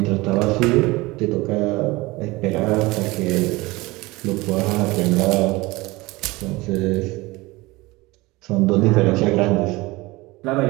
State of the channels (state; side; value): quieter; left; 21.7 dB